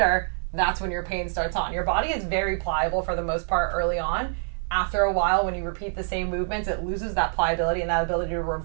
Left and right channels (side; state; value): left; silent; digital silence